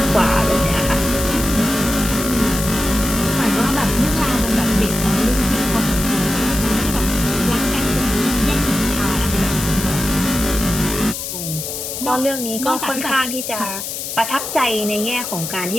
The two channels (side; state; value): left; noise; hiss, 6 dB below the sound